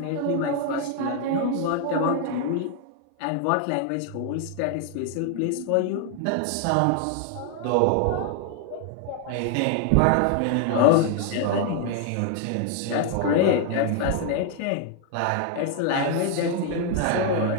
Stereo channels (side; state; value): both; different; correlation 0.00